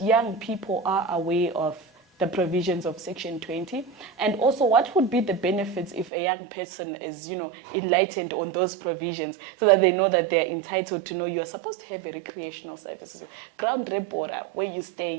people are aware of the provisions of Section 20? And also, what would be the benefits if a young person is, enlightened on those provisions so that they know that they're entitled to know you're supposed to have a recreational services, ground repora, where you stay,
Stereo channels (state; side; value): drops out; left; at 6.1 s